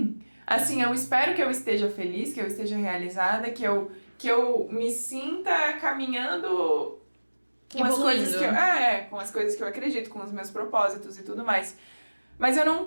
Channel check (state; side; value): inverted; both; correlation -1.00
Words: Assim, eu espero que eu esteja feliz, que eu esteja realizada, que eu me sinta caminhando com as coisas que eu... com as coisas que eu acredito, com os meus propósitos e tudo mais. Mas eu não